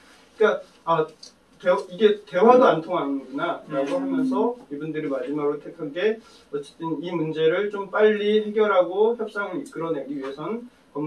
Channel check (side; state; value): both; identical; correlation 1.00